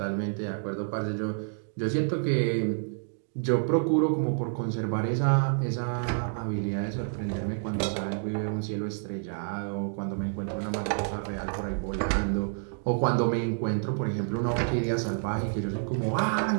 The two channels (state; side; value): silent; left; digital silence